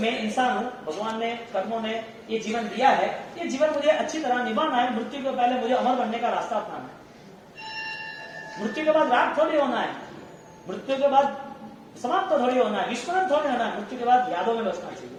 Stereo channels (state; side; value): identical; both; correlation 1.00